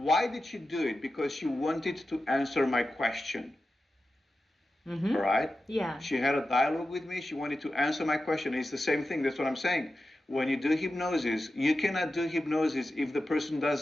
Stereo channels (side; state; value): both; normal; correlation 0.92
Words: did she do it? Because she wanted to answer my question. Right? Yeah. She had a dialogue with me. She wanted to answer my question. It's the same thing. That's what I'm saying. When you do hypnosis, you cannot do hypnosis if the person